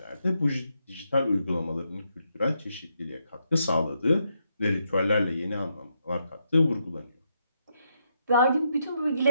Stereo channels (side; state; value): both; inverted; correlation -0.79